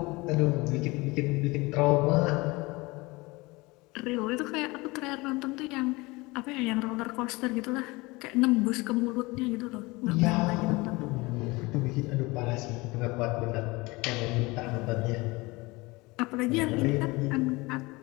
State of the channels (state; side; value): quieter; right; 23.4 dB